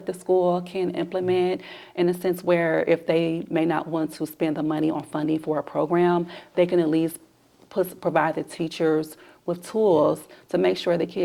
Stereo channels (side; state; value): both; identical; correlation 1.00